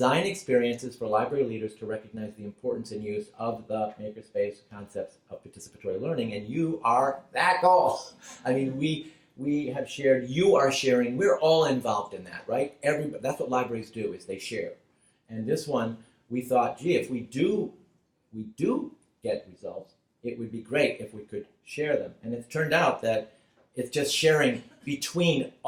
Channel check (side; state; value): both; identical; correlation 1.00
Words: experiences for library leaders to recognize the importance and use of the MakerSpace concepts of participatory learning. And you are that goal. I mean, we have shared, you are sharing, we're all involved in that, right? That's what libraries do, is they share. And this one, we thought, gee, if we do get results, it would be great if we could share them. And it's turned out that it's just sharing between